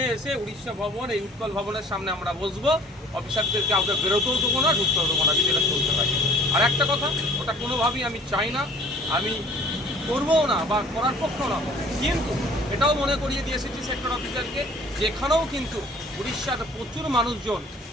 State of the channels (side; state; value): both; normal; correlation 0.52